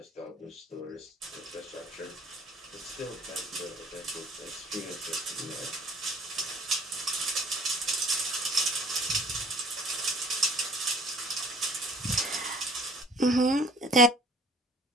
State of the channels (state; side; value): normal; both; correlation 0.52